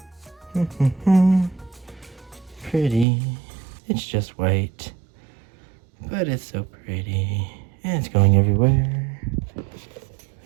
Pretty. It's just white, but it's so pretty. And it's going everywhere.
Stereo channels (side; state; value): left; drops out; at 3.1 s